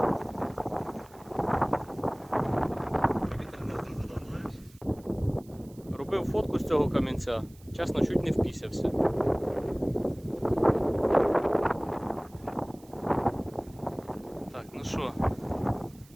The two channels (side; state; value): right; noise; hiss, 27 dB below the sound